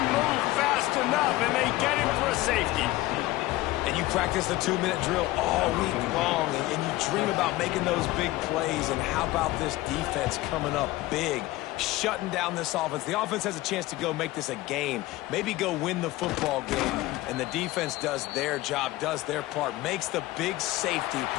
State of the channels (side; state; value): right; quieter; 17.9 dB